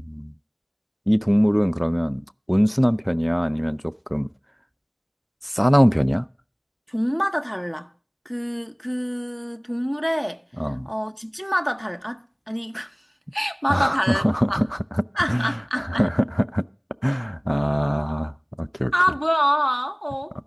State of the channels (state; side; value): identical; both; correlation 1.00